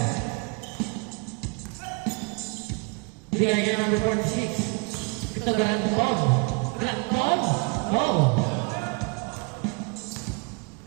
Bigay kay number 46. Ito Granton. Granton? No.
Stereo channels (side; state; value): left; quieter; 32.6 dB